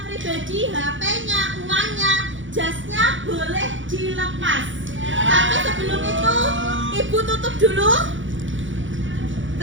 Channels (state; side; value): late; left; 0.56 ms